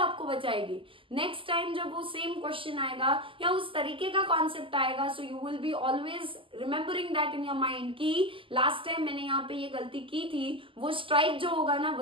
बचाएगी। नेक्स्ट टाइम जब वो सेम क्वेश्चन आएगा या उस तरीके का कॉन्सेप्ट आएगा, so you will be always remembering that in your mind कि लास्ट टाइम मैंने यहाँ पे ये गलती की थी, वो स्ट्राइक जो होगा ना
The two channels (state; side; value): late; left; 0.25 ms